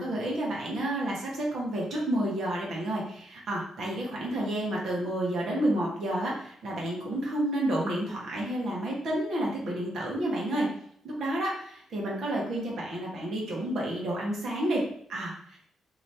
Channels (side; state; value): both; normal; correlation 0.77